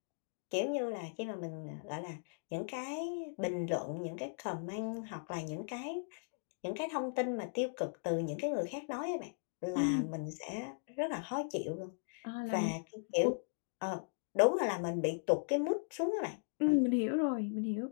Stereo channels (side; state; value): right; silent; digital silence